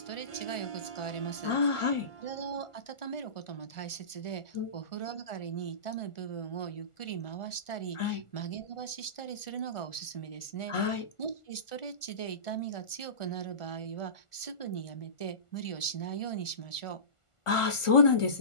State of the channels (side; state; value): right; late; 1.4 ms